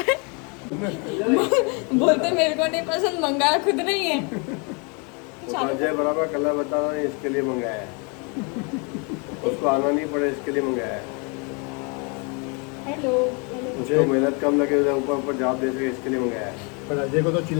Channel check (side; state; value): right; quieter; 33.3 dB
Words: हैं। बोलते मेरे को नहीं पसंद, मंगाया खुद नहीं है। जय बराबर कलर बता रहा हूँ, इसके लिए मंगाया है। उसको आना नहीं पड़े, इसके लिए मंगाया है। हेलो। उसको मेहनत कम लगे, ऊपर जवाब दे सके, इसके लिए मंगाया है। पर अजय को तो